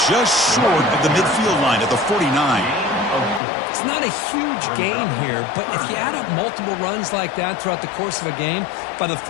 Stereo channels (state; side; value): drops out; right; at 3.4 s